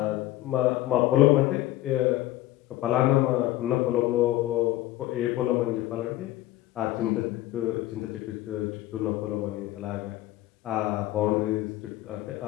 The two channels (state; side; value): quieter; right; 15.8 dB